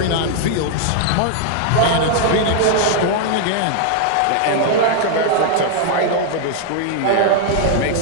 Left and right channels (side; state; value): both; different; correlation 0.00